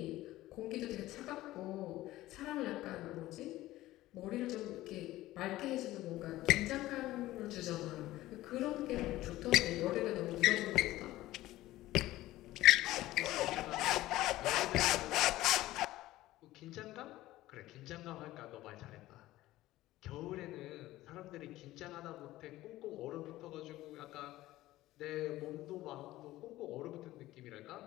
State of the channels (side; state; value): right; quieter; 16.4 dB